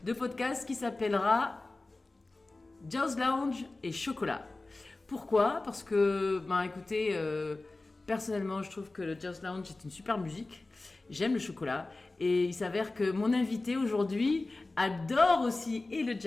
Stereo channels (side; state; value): right; quieter; 3.1 dB